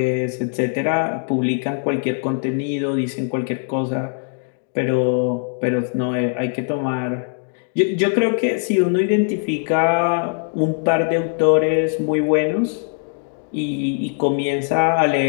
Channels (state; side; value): silent; right; 58 dB below the other